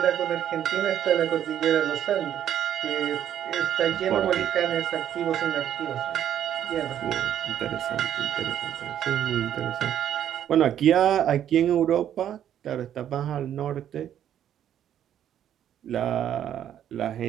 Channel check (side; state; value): left; quieter; 10.3 dB